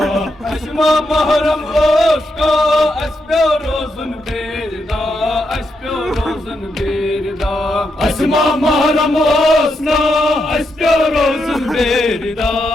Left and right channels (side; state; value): both; normal; correlation 0.82